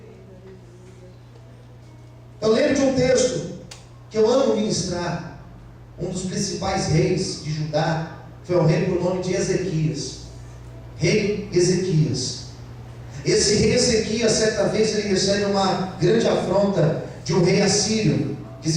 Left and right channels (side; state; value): both; identical; correlation 1.00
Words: Eu lembro de um texto que eu amo ministrar. Um dos principais reis de Judá foi o rei por nome de Ezequias. Rei Ezequias. Esse rei Ezequias, certa vez, ele recebe uma grande afronta de um rei assírio, que